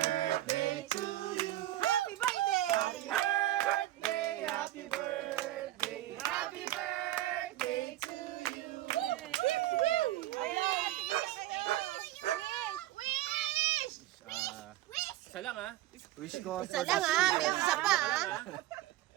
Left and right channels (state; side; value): quieter; left; 14.9 dB